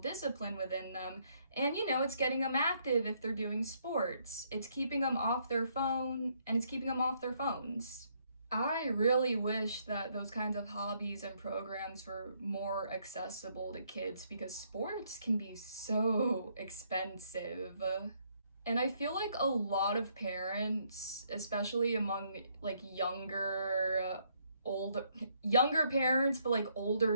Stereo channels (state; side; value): inverted; both; correlation -0.71